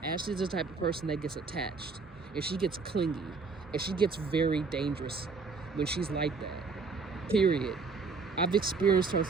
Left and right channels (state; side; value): quieter; left; 4.6 dB